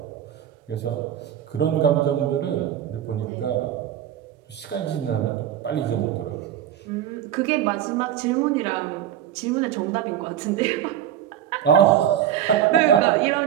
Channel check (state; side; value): quieter; left; 10.8 dB